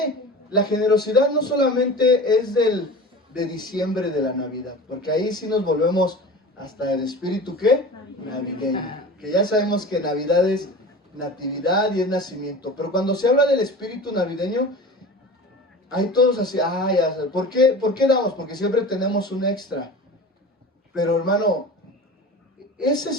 la generosidad, no solamente es de diciembre de la Navidad, porque ahí sí nos volvemos hasta el espíritu, ¿qué? Navideño. Que ya sabemos que Navidad es natividad y es nacimiento. Pero cuando se habla del espíritu navideño, hay todos así, ya sé. ¿Por qué damos? Porque siempre tenemos un extra. Pero hermano, ese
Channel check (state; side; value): normal; both; correlation 0.35